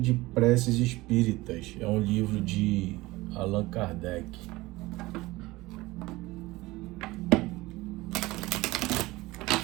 de Preces Espíritas. É um livro de Allan Kardec.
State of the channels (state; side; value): quieter; left; 20.1 dB